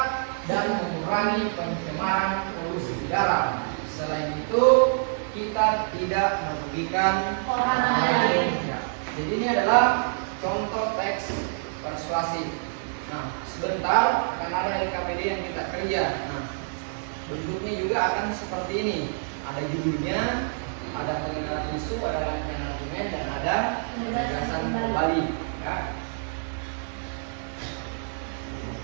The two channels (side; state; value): left; silent; 60 dB below the other